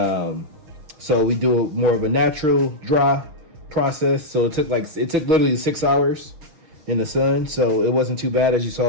So we do more of a natural dry process. So it took literally 6 hours in the sun. So it wasn't too bad. As you saw,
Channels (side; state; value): left; late; 6.4 ms